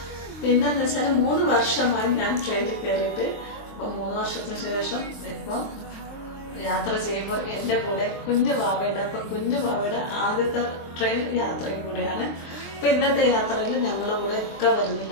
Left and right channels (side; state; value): right; late; 23 ms